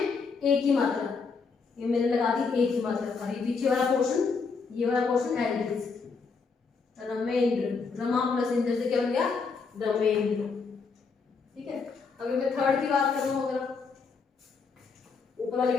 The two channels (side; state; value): right; quieter; 4.9 dB